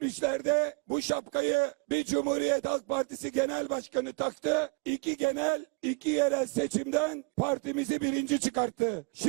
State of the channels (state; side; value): quieter; left; 32.3 dB